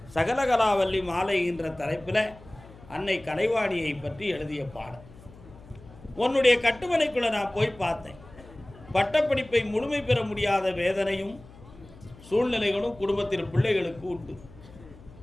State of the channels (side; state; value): left; noise; hum, 21 dB below the sound